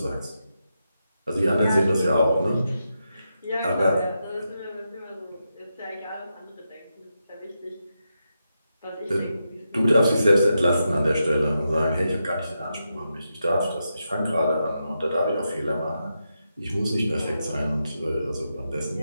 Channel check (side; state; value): both; inverted; correlation -0.86